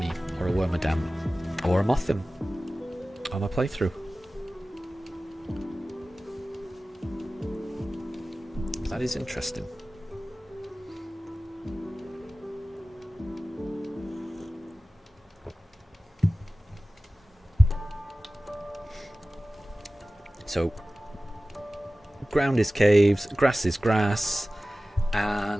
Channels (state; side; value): normal; both; correlation 0.96